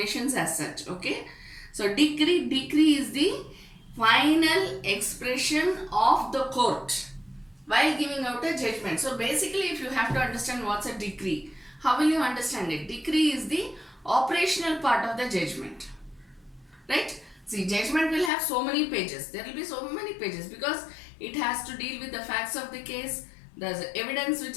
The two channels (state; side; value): drops out; right; at 18.3 s